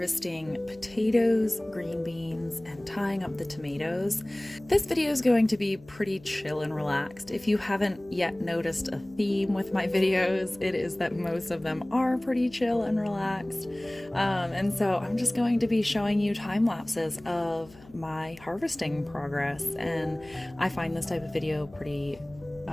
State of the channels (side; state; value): left; noise; hum, 23 dB below the sound